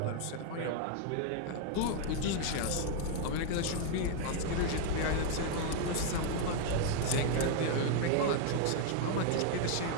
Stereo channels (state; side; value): different; both; correlation 0.00